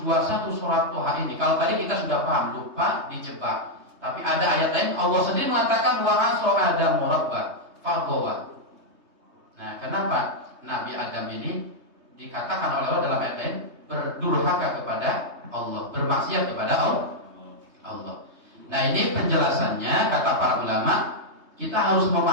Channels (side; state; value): left; late; 3.2 ms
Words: surat Toha ini? Kalau tadi kita sudah paham, lupa, dijebak. Tapi ada ayat lain Allah sendiri mengatakan wa 'asa Adamu rabbahu faghawa. Nah kenapa Nabi Adam ini dikatakan oleh Allah dalam ayat lain berdurhaka kepada Allah, bermaksiat kepada Allah. Nah ini penjelasannya kata para ulama, kita harus